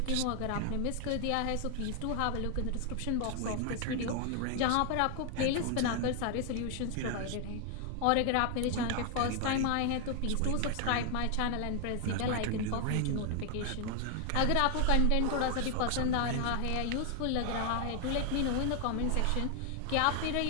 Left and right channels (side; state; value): both; different; correlation 0.00